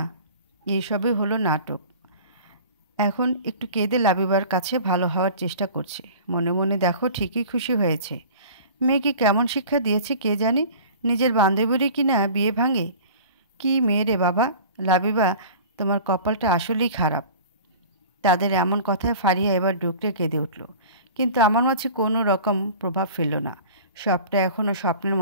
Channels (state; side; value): inverted; both; correlation -0.41